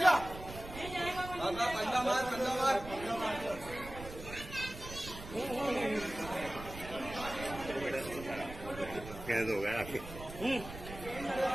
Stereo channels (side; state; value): right; noise; rumble, 12 dB below the sound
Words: कंधा मार। कैद हो गया।